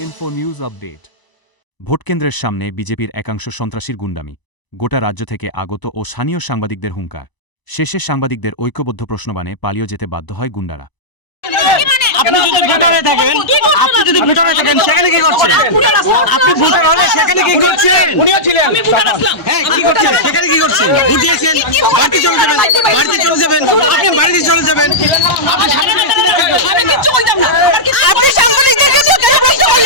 Info News Update. ভোটকেন্দ্রের সামনে বিজেপির একাংশ সন্ত্রাসীর গুন্ডামি, গোটা রাজ্য থেকে আগত ও স্থানীয় সাংবাদিকদের হুঙ্কার। শেষে সাংবাদিকদের ঐক্যবদ্ধ প্রশ্নবাণে পালিয়ে যেতে বাধ্য হয় গুন্ডারা। আপনি যদি ভোটারে থাকেন সেখানে কি করছেন? আপনি ভোটার হলে সেখানে কি করছেন? উনিও ছিলেন, হ্যাঁ, কি করছেন? সেখানে কি করছেন? ভোট দিয়েছেন, বাড়িতে চলে যাবেন, আপনি বাড়িতে চলে যাবেন। আমি কিচ্ছু বলতাম না। আপনি সাংবাদিকদেরকে নিয়ে কেন প্রশ্ন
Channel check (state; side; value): late; right; 1.0 ms